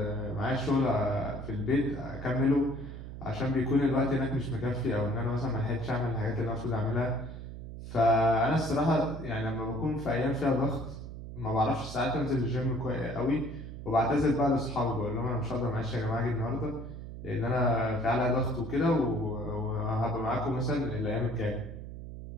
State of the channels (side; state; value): right; noise; hum, 10 dB below the sound